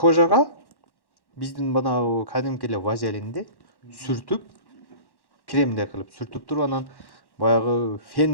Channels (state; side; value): late; right; 1.1 ms